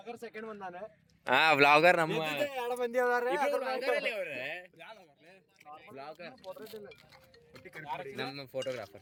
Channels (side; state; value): both; identical; correlation 1.00